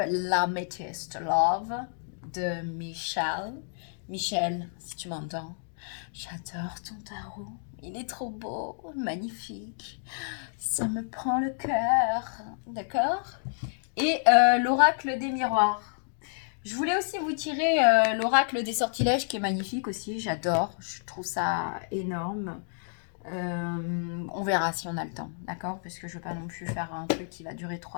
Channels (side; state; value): right; silent; digital silence